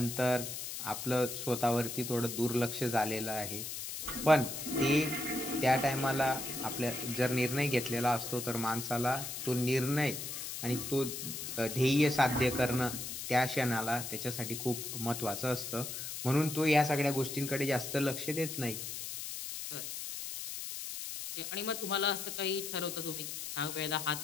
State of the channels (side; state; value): left; noise; hiss, 6 dB below the sound